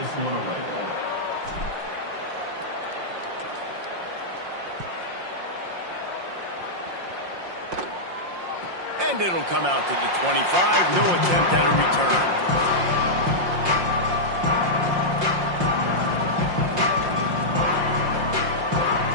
one away. And it'll come out to the 25. No attempt at a return.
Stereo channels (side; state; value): left; late; 5.6 ms